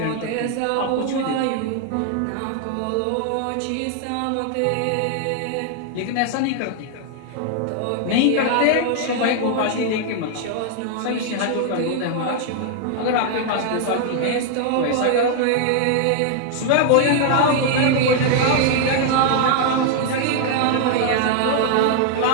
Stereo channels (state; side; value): different; both; correlation 0.00